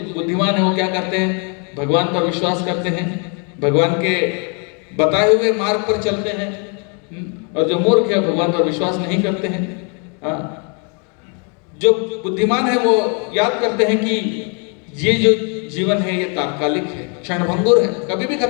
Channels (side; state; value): right; quieter; 37.5 dB